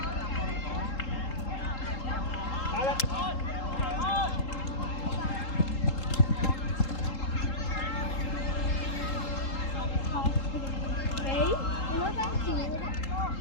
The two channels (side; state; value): right; late; 3.8 ms